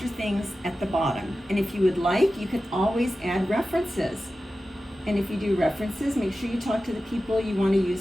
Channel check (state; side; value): normal; both; correlation 0.94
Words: things at the bottom. And if you would like, you can always add references. And if you do references, make sure you talk to the people you want to